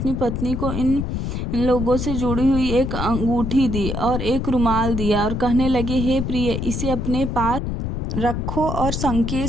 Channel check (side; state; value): left; noise; rumble, 3 dB below the sound